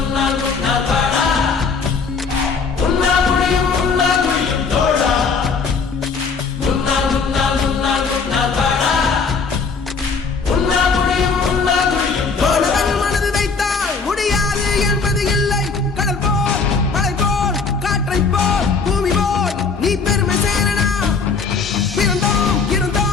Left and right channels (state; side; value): quieter; right; 5.0 dB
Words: உன்னால் வாடா, உன்னால் முடியும் தோழா. உன்னால் உன்னால் உன்னால் உன்னால் வாடா, உன்னால் முடியும் தோழா. மாணவன் மனது வைத்தால் முடியாது என்பது இல்லை. கடல் போல் மலை போல் காற்றை போல் பூமி போல் நீ பெருமை சேரனா. பிறந்தோம்